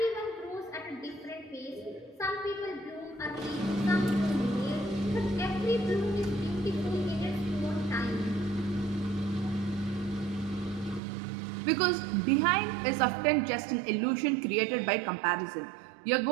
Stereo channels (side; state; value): left; drops out; at 11.0 s